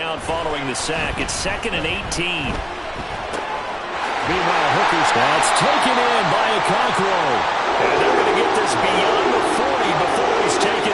following the sack. It's 2nd and 18. Meanwhile, Hooker's that's taken in by Okonkwo. And they're going to get this beyond the 40 before he's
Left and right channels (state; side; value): identical; both; correlation 1.00